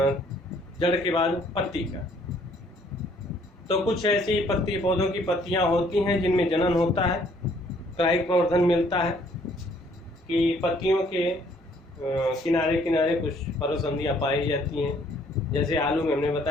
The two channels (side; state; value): both; normal; correlation 0.62